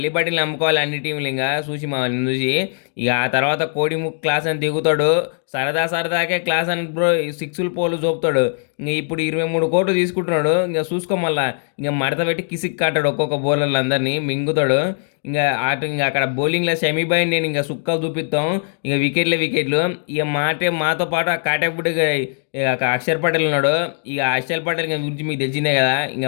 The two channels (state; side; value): silent; right; digital silence